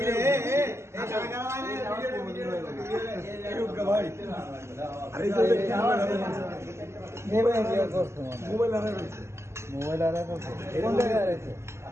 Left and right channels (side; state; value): left; late; 0.13 ms